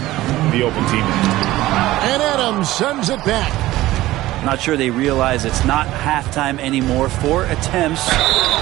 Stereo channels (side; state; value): left; quieter; 16.6 dB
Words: the open teammate. And Adams sends it back. Not sure they realize it's not halftime anymore. 4 attempts,